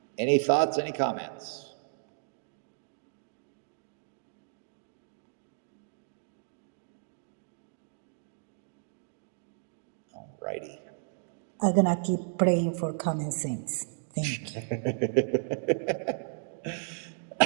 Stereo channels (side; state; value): left; silent; digital silence